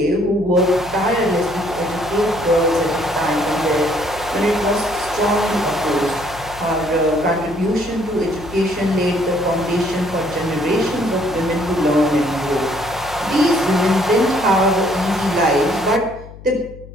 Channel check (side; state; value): left; noise; hum, 17 dB below the sound